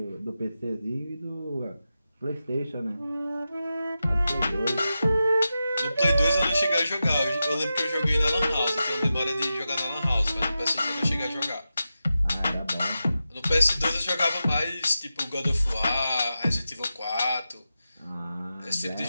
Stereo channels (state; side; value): inverted; both; correlation -0.91